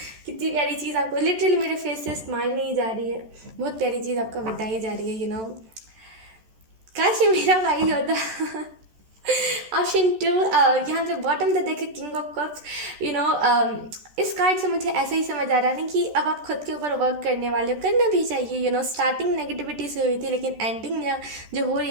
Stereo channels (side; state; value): left; late; 14 ms